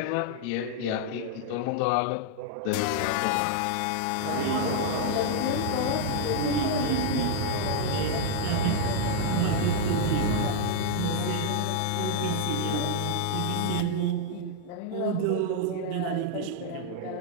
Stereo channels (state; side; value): different; both; correlation 0.00